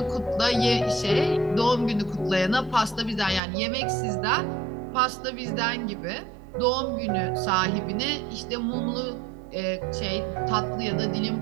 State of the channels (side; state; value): left; drops out; at 3.4 s